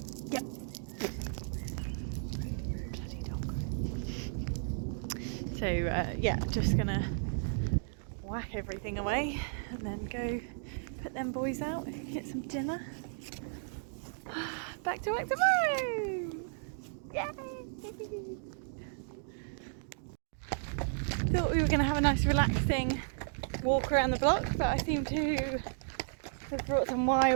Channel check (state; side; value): silent; left; digital silence